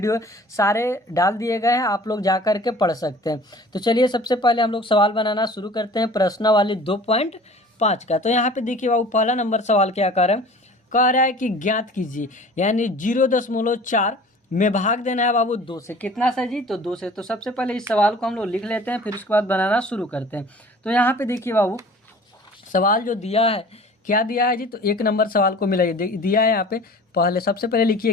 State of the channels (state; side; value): normal; both; correlation 0.45